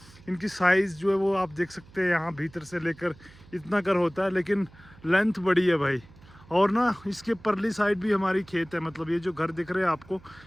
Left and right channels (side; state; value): right; noise; hum, 24 dB below the sound